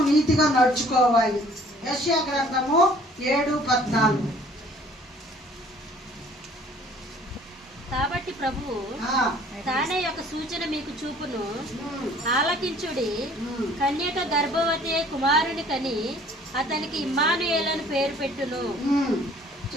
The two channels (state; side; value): normal; both; correlation 0.55